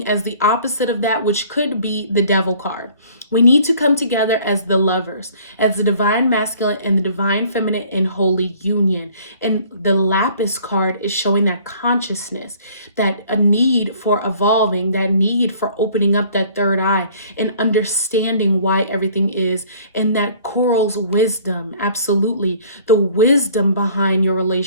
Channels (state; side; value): inverted; both; correlation -0.54